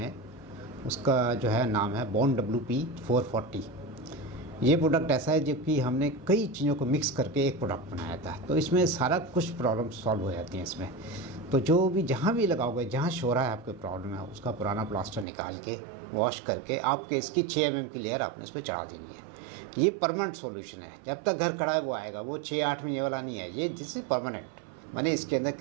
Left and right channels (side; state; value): left; drops out; at 15.2 s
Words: उसका जो है नाम है बॉन्ड WP440। ये प्रोडक्ट ऐसा है जो कि हमने कई चीज़ों को मिक्स करके एक प्रोडक्ट बनाया था, तो इसमें सारा कुछ प्रॉब्लम सॉल्व हो जाती हैं इसमें। तो जो भी जहाँ भी लगाओगे, जहाँ शोरा है आपके प्रॉब्लम है, उसका पुराना प्लास्टर निकाल के वॉश करके आपके इसकी 6 mm की लेयर आपने इस पर चढ़ा देनी है। ये परमानेंट सॉल्यूशन है, जब तक घर खड़ा है वो आएगा, वो 6-8 महीने वाला नहीं है। ये दिस इज परमानेंट, माने इसके अंदर